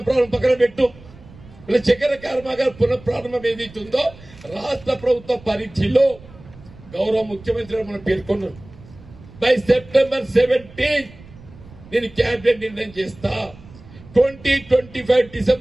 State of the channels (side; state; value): right; noise; rumble, 21 dB below the sound